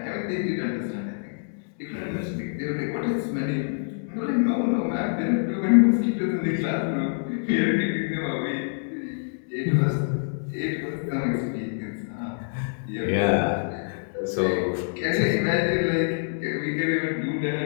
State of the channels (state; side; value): silent; right; digital silence